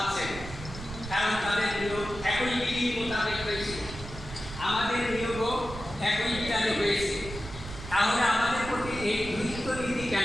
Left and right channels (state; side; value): noise; right; rumble, 11 dB below the sound